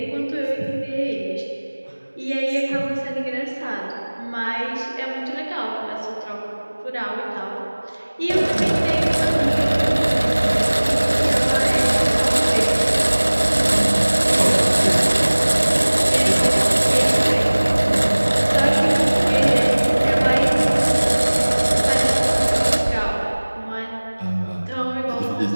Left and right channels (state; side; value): inverted; both; correlation -1.00